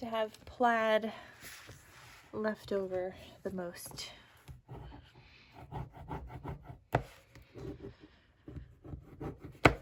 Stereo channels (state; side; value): identical; both; correlation 1.00